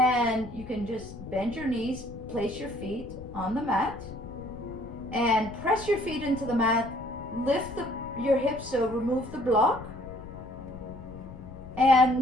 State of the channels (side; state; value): left; noise; rumble, 14 dB below the sound